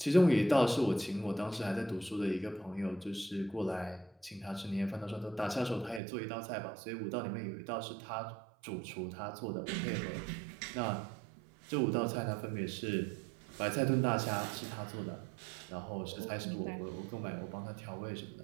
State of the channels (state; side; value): drops out; left; at 6.0 s